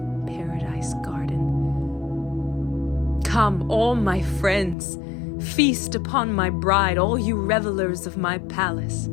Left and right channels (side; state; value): right; drops out; at 4.8 s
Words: paradise garden. Come, all my friends, feast upon my bride, all you revelers of my palace.